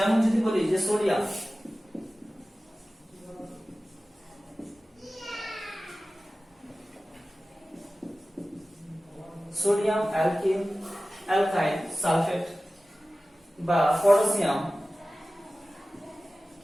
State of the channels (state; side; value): normal; both; correlation 0.96